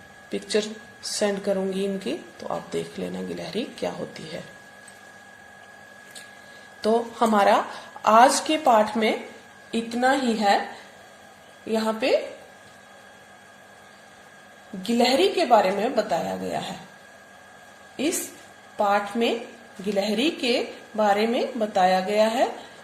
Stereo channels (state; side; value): identical; both; correlation 1.00